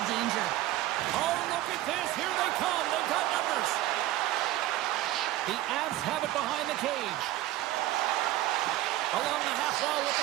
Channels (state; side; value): quieter; left; 15.2 dB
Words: danger. Oh, look at this. Here they come. They've got numbers. The Avs have it behind the cage. Along the half wall with